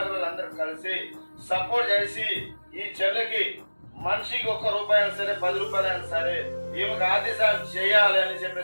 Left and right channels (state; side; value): inverted; both; correlation -1.00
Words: అందరూ కలిసి సపోర్ట్ చేసి ఈ చెల్లెకి మనిషికి ₹1 అయినా సరే, ₹10 అయినా సరే ఈమెకు ఆర్థిక సాయం చేయాలి అని